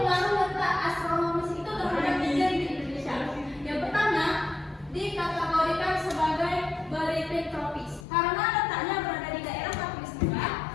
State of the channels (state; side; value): drops out; right; at 8.1 s